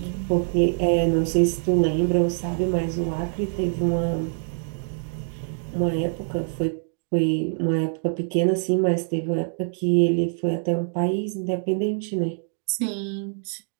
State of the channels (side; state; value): left; silent; digital silence